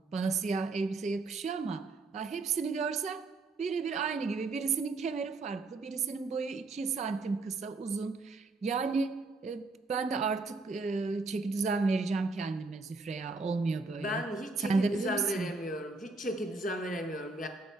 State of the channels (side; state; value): left; quieter; 3.6 dB